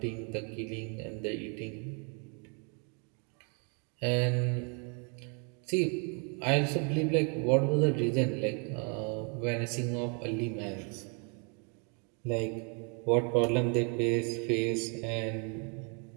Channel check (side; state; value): left; quieter; 37.5 dB